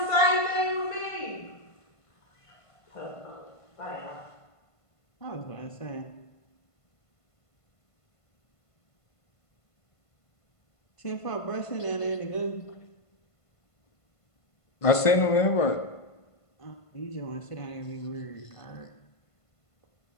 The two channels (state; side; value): late; right; 1.5 ms